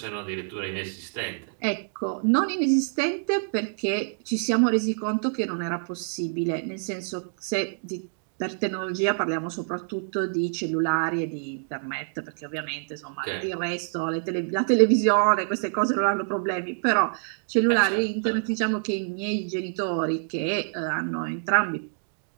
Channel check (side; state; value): left; silent; digital silence